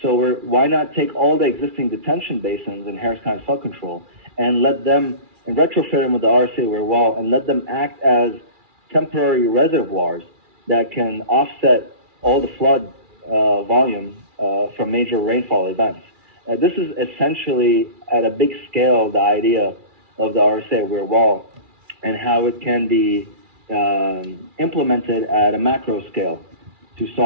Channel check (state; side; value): late; left; 2.4 ms